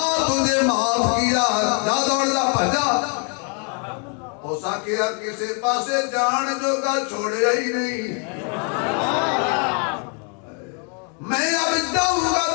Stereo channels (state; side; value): quieter; right; 39.2 dB